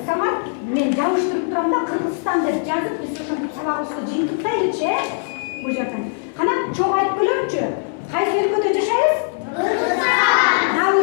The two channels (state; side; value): silent; right; 65 dB below the other